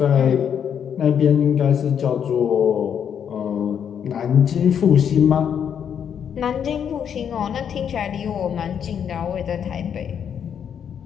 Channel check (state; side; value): quieter; right; 8.2 dB